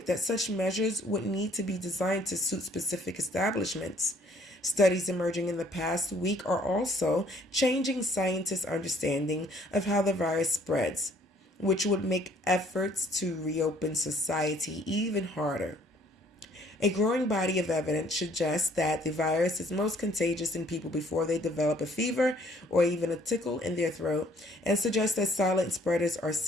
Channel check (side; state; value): both; normal; correlation 0.60